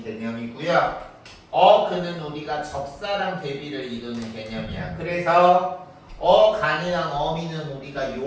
개념이고요. 어근은 우리가 접사랑 대비를 이루는 개념이야. 그래서 어간이랑 어미는 우리가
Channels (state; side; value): identical; both; correlation 1.00